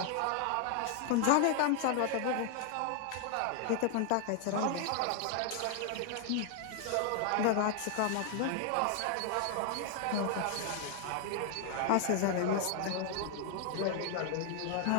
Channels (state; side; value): different; both; correlation 0.00